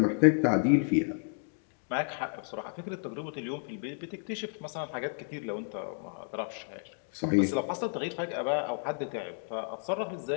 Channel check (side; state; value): right; silent; 57 dB below the other